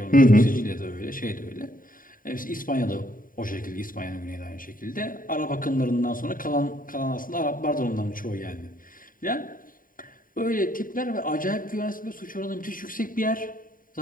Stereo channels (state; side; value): late; right; 0.40 ms